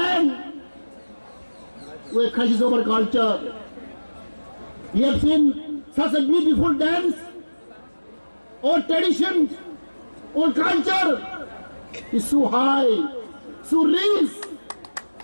We have crisis of our culture. We have seen such a beautiful dance. Our tradition, our culture is so high, so rich.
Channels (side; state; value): both; inverted; correlation -1.00